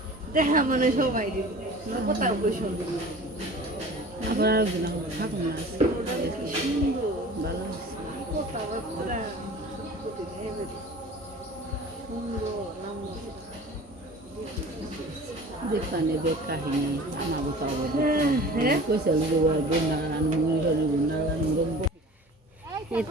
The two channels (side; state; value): both; normal; correlation 0.42